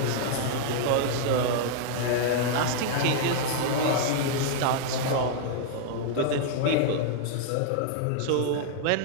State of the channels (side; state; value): both; different; correlation -0.01